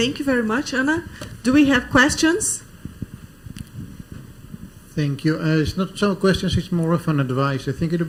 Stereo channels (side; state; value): both; identical; correlation 1.00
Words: you very much, Anna. Do we have questions? Thank you. It's not so questions, it's more of an advice. I think it would